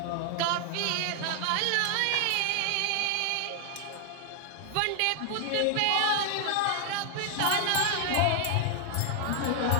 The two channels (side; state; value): both; different; correlation 0.00